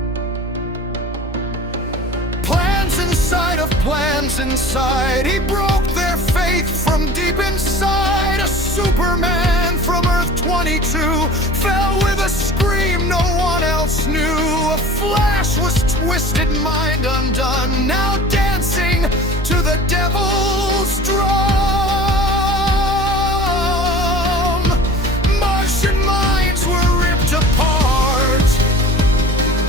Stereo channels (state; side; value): normal; both; correlation 0.42